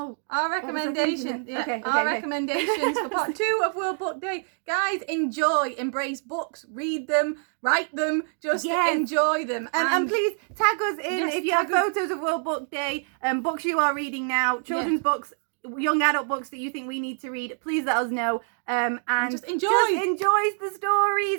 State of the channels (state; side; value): silent; left; 61 dB below the other